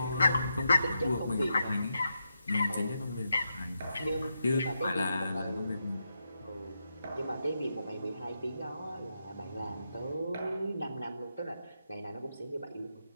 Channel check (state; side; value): inverted; both; correlation -0.85